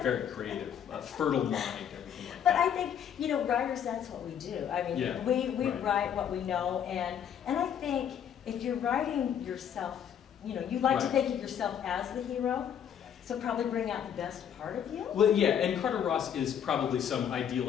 very creative, fertile mind, everything like that. But I think, you know, writers, that's what we do. I mean, we write what we know, and I think if you're writing yourself, you know, you like to think of yourself as the hero. So probably bring out the best part of you? Well, yeah, and Carter Ross is probably some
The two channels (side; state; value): right; quieter; 8.8 dB